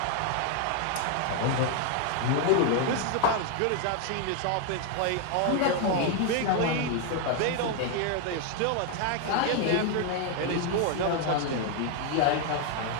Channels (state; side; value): different; both; correlation 0.01